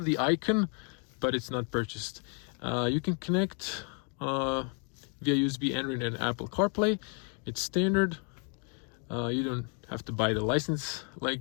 the icon, but it's not purchased. You can connect via USB, Android, and Apple CarPlay. It's standard. You don't have to buy the license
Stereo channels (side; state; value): right; quieter; 39.6 dB